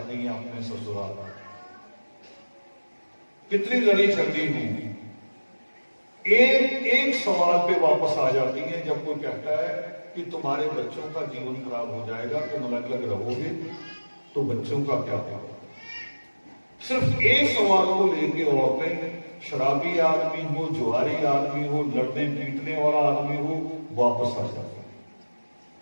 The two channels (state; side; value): inverted; both; correlation -1.00